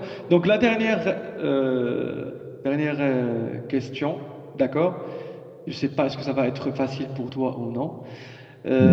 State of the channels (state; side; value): identical; both; correlation 1.00